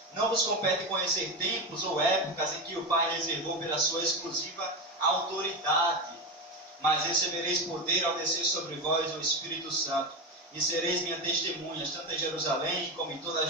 não vos compete conhecer tempos ou épocas em que o Pai reservou pela sua exclusiva autoridade, mas recebereis poder ao descer sobre vós o Espírito Santo, e sereis minhas testemunhas, tanto em Jerusalém, como em toda a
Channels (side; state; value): both; normal; correlation 0.17